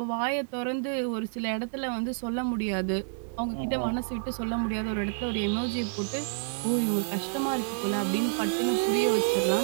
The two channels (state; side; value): silent; left; digital silence